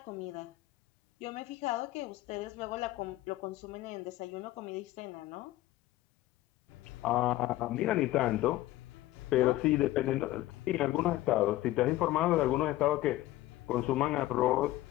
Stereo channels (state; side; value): quieter; right; 16.1 dB